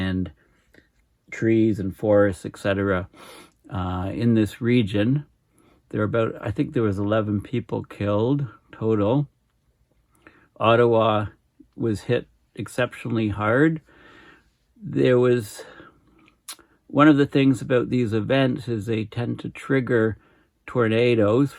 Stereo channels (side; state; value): both; identical; correlation 1.00